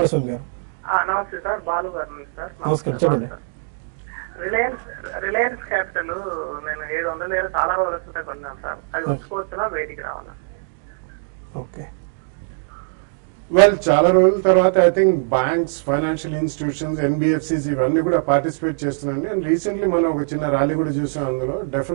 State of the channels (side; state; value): left; silent; digital silence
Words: గారు. నమస్తే సార్, బాలు గారు సార్. నమస్కారం, చెప్పండి. రిలయన్స్ క్యాపిటల్ నేను 700 చాలా రోజులు కొన్నాను సార్. అది వచ్చుకోవచ్చునా బయటికి రావాలా? ఓకే, వెల్ చాలా రోజుల తర్వాత I think banks, financial institutions, NBFCs ఇవన్నీ కూడా పార్టిసిపేట్ చేస్తున్నాయండి. అండ్ రీసెంట్లీ మనం ఒక చిన్న ర్యాలీ కూడా చూసాం. అందులో